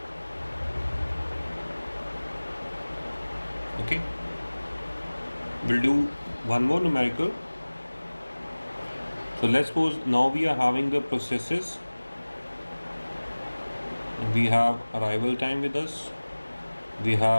Okay. We'll do one more numerical. So let's suppose now we are having the processes. We have arrival time with us. We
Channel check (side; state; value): both; inverted; correlation -1.00